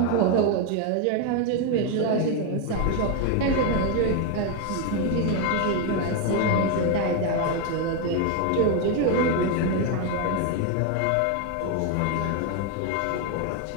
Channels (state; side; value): different; both; correlation 0.01